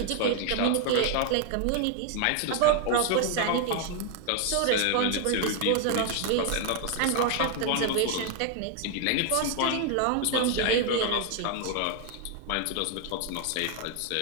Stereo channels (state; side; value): different; both; correlation 0.00